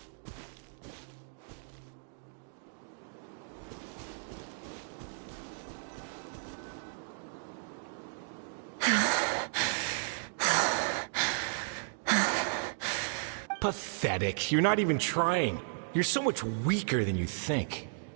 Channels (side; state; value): left; silent; digital silence